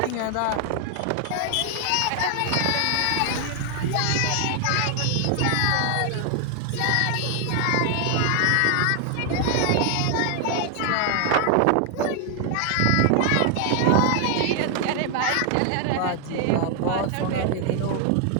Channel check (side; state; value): both; different; correlation 0.00